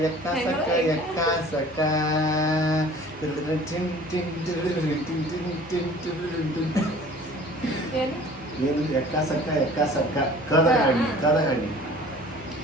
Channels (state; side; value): normal; both; correlation 0.47